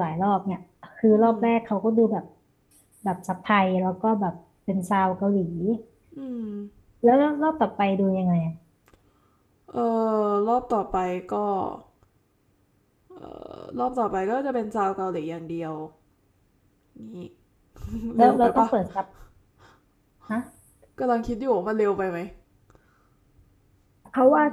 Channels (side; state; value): both; identical; correlation 1.00